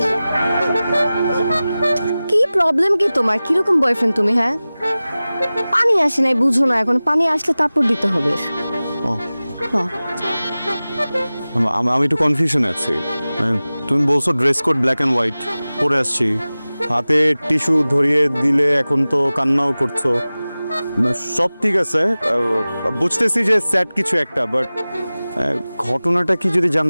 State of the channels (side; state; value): both; inverted; correlation -0.97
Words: কি প্রবলেম কি তোমার? কিরকম বয়ফ্রেন্ড তুমি? হ্যাঁ, পানি আসে নাই বুঝো না, এখন পানি আসলে তারপর দিতে হবে। ও, হ্যাঁ। আমি একটু কনফিউশনে আছি। তুমি বলছো dress code black and white, পরে আসছি, হাতে টিস্যু ধরিয়ে দিলে এখন তো কান্নাও করছো। সব ঠিক আছে, বুঝতেছি যে স্যাড কিছু একটা, বাট ঘটনাটা কি যদি